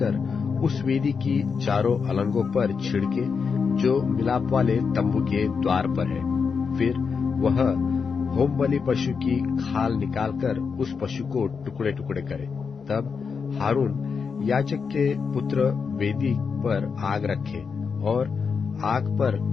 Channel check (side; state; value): right; quieter; 5.7 dB